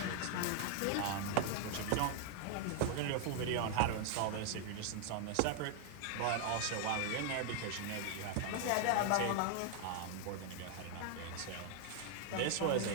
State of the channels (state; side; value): different; both; correlation 0.00